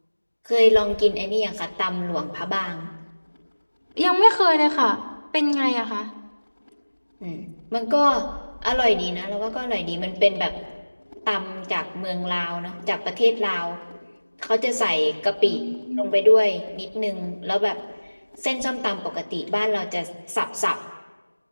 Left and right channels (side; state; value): both; inverted; correlation -1.00